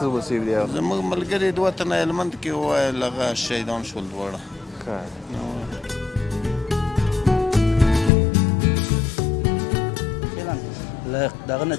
وسیب دي. زموږ ملګري دوه تنه المنت کې وویل هغه شهیدان شول دواړه. دغه نه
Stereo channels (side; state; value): right; drops out; at 8.1 s